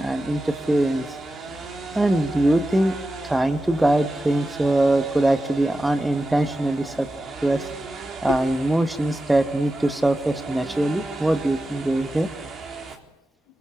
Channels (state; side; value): normal; both; correlation 0.92